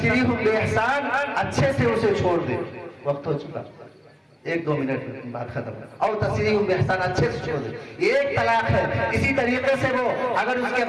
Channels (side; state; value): both; identical; correlation 1.00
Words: بإحسان, اچھے سے اسے چھوڑ دے. وقت ہو چکا, 1-2 منٹ بات ختم. اور تسریح بإحسان, اچھے سے چھوڑ دے. یہ 1 طلاق ہے. اسی طریقے سے وہ اگر اس کے